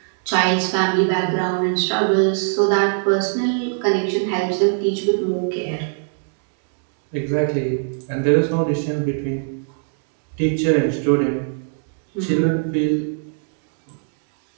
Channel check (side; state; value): left; silent; digital silence